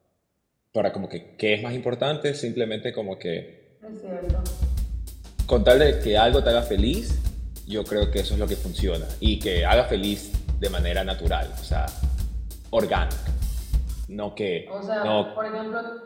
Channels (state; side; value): identical; both; correlation 1.00